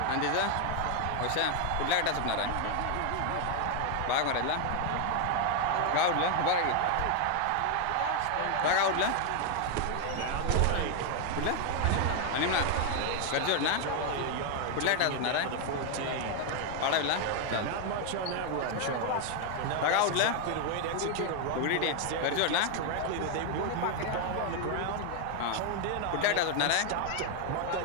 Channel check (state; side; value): different; both; correlation 0.01